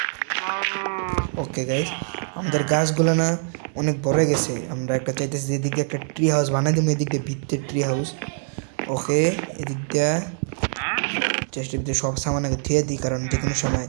ওকে গাইস, আমাদের গাছগুলো না অনেক বড় হয়ে গেছে। আমরা একটা চাইতেছি এদিক দিয়ে একটা ট্রি হাউস বানাই দেবো, এদিক দিয়ে ভিত্তির ট্রি হাউস। ওকে এদিক দিয়ে চেষ্টার ভিতরে সব সামান আগে ধুয়ে দিই, কারণ যে কোনো সময়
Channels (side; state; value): left; silent; digital silence